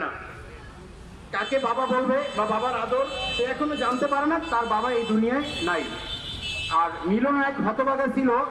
না, কাকে বাবা বলবে বা বাবার আদর সে এখনো জানতে পারে না, তার বাবা এই দুনিয়ায় নাই। আর মিলন এক হতভাগা ছিল।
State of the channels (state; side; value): identical; both; correlation 1.00